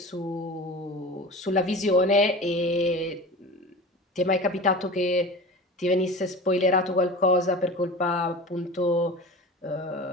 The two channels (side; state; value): both; normal; correlation 0.34